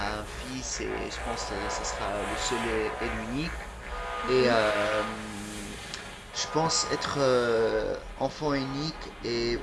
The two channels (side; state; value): both; identical; correlation 1.00